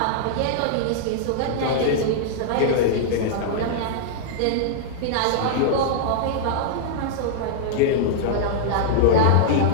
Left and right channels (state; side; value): different; both; correlation -0.01